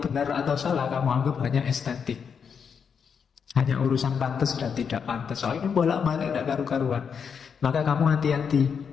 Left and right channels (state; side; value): quieter; right; 6.7 dB